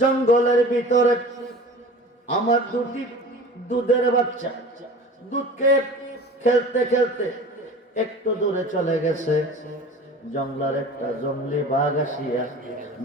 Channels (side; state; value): both; normal; correlation 0.39